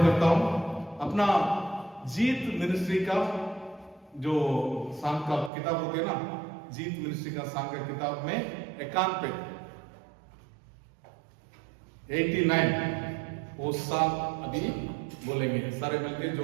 हूँ। अपना जीत मिनिस्ट्री का जो सांग का किताब होते हैं ना, जीत मिनिस्ट्री का सांग का किताब में 91 89 वो सांग अभी बोलेंगे सारे मिलके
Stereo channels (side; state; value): left; drops out; at 5.5 s